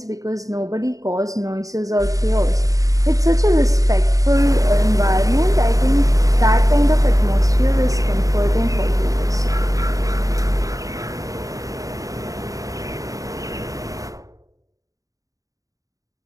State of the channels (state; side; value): late; left; 0.16 ms